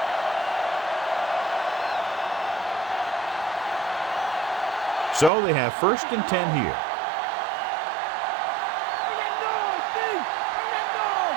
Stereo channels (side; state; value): left; drops out; at 5.3 s